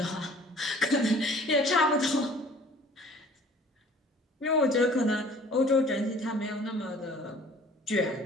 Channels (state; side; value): normal; both; correlation 0.51